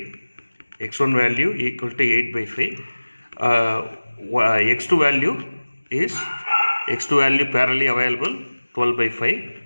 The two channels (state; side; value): inverted; both; correlation -1.00